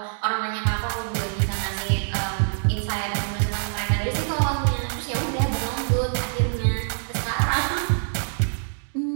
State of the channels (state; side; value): silent; left; digital silence